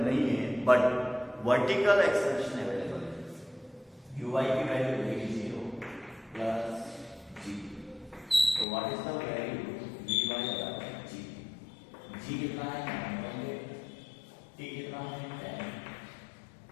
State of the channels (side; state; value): right; drops out; at 8.7 s